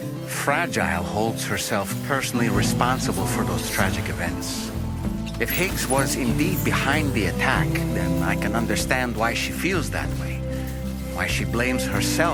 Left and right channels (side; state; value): both; identical; correlation 1.00